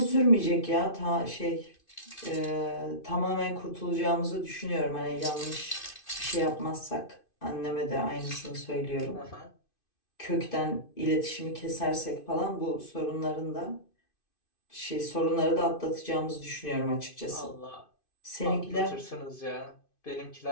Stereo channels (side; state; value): right; late; 2.5 ms